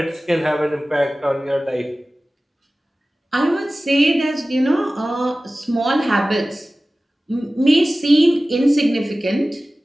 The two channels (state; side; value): normal; both; correlation 0.97